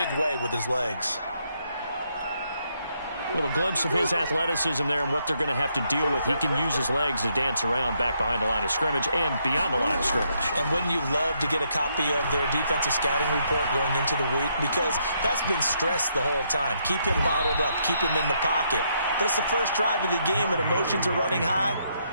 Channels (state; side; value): inverted; both; correlation -0.75